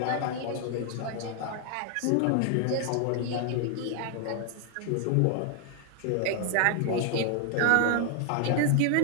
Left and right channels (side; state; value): both; different; correlation 0.00